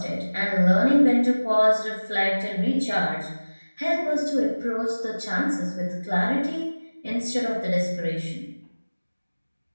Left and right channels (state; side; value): inverted; both; correlation -1.00